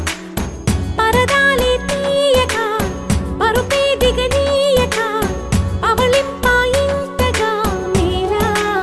పరదాలే తీయక పరుపే దిగనీయక పవళింపాయింతగా మేరా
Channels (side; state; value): both; identical; correlation 1.00